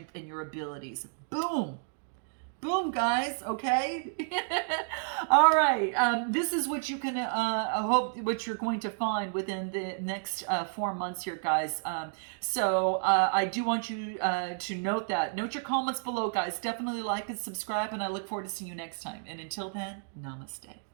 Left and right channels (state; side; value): silent; left; digital silence